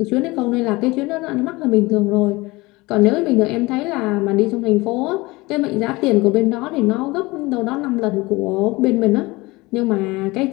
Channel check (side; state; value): right; quieter; 22.2 dB